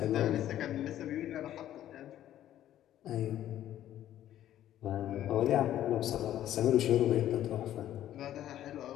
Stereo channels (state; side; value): quieter; right; 12.1 dB